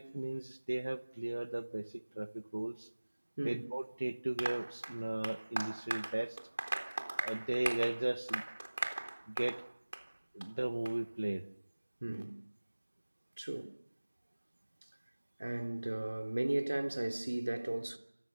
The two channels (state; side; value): inverted; both; correlation -1.00